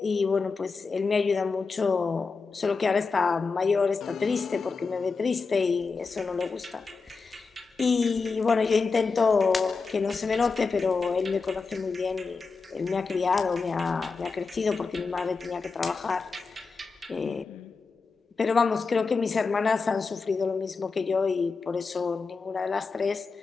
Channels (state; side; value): quieter; right; 4.6 dB